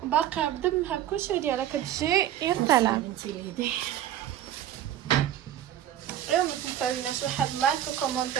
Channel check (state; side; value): quieter; left; 11.5 dB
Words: باقي بدمها بكلشي ديالها كتجي يا سلام. انت ليدي اليوم ما تنساوناش واحد لايك